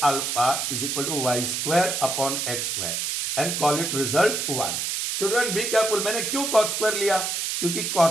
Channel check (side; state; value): right; noise; hiss, 1 dB below the sound